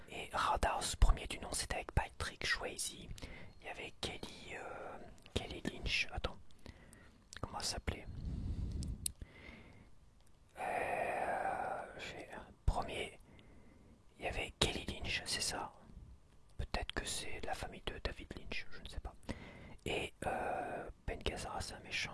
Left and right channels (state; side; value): identical; both; correlation 1.00